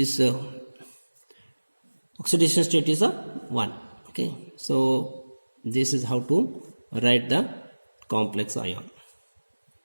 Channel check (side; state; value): both; inverted; correlation -1.00